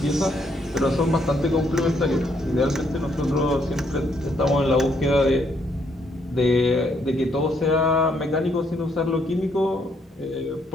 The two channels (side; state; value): both; normal; correlation 0.72